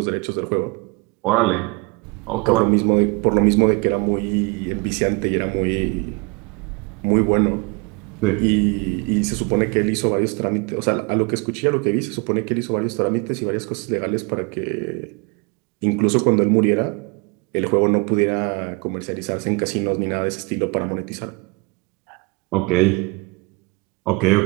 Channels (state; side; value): quieter; left; 28.2 dB